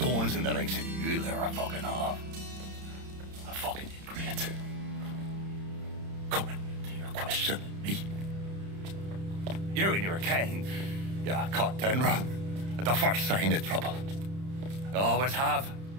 in the likes of you there are fucking off. A fucking ingrate. Coming to your question, me. You and your kind, you cut and run at the first sign of trouble. You always have,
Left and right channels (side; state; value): left; late; 31 ms